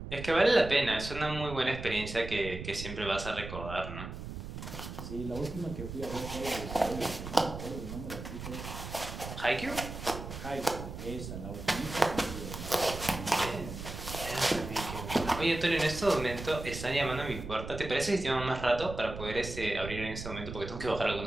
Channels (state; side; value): noise; right; rumble, 9 dB below the sound